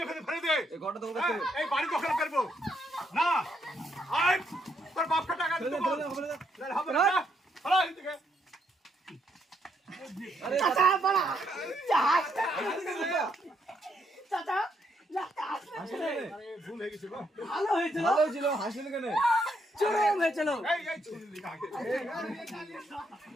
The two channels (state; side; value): normal; both; correlation 0.75